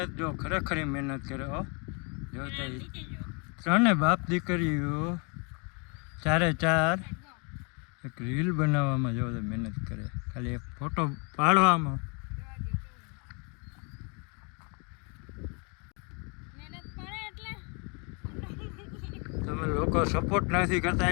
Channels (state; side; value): quieter; right; 34.1 dB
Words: જો, ખરેખર મહેનત કરે હો. જો ત્રણે બાપ દીકરીઓ ચારે ચાર એક રીલ બનાવવામાં જો મહેનત કરે, ખાલી એક ફોટો પાડવામાં. મહેનત પડે એટલે તમે લોકો સપોર્ટ નથી કરતા